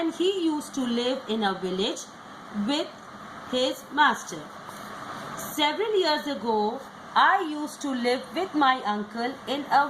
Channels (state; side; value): identical; both; correlation 1.00